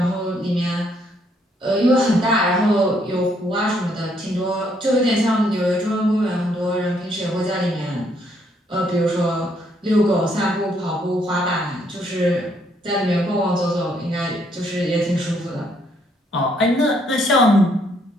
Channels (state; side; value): normal; both; correlation 0.70